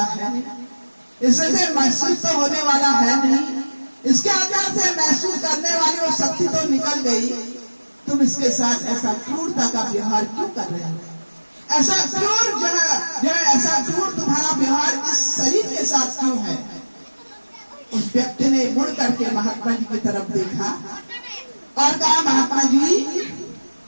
है नहीं, इससे महसूस तो होने वाला है नहीं, इसके अंदर से महसूस करने वाली वो शक्ति तो निकल गई। तुम इसके साथ ऐसा क्रूरता का व्यवहार क्यों कर रहे हो? ऐसा क्रूर जो है ऐसा क्रूर तुम्हारा व्यवहार इस शरीर के साथ क्यों है? उस व्यक्ति ने मुड़ करके महात्मा जी की तरफ देखा और कहा महात्मा जी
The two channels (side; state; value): both; inverted; correlation -1.00